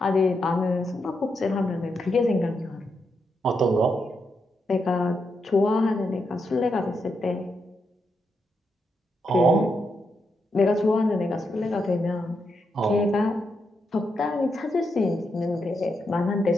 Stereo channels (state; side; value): normal; both; correlation 0.82